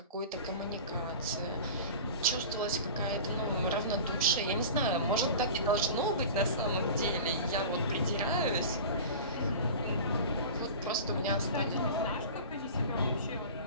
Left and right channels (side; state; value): both; inverted; correlation -0.35